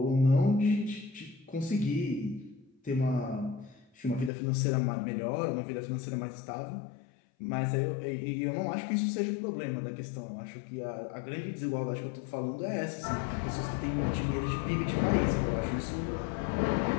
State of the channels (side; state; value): right; drops out; at 4.3 s